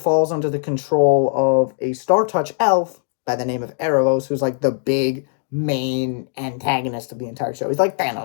under the control of a Star Touch elf by the name of Erebos, who's like the big main antagonist of the entire show. He's like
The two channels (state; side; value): silent; right; digital silence